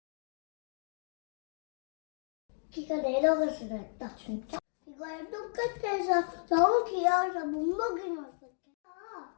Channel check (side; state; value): right; silent; digital silence